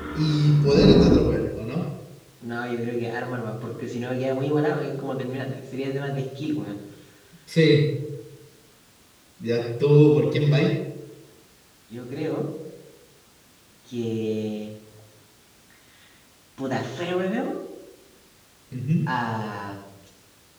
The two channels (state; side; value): identical; both; correlation 1.00